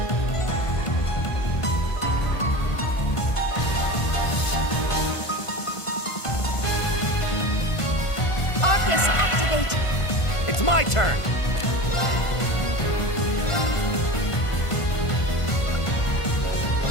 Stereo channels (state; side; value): late; right; 1.5 ms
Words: Arcus, activate. It's my turn.